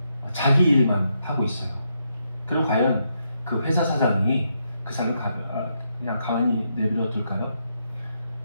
자기 일만 하고 있어요. 그럼 과연 그 회사 사장이 그 사람을 그냥 가만히 내버려 둘까요?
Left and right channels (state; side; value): inverted; both; correlation -0.80